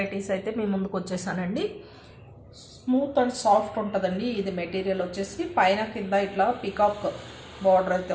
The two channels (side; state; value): both; identical; correlation 1.00